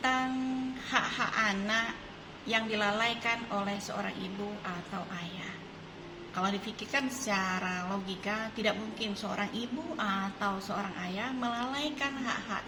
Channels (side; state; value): both; identical; correlation 1.00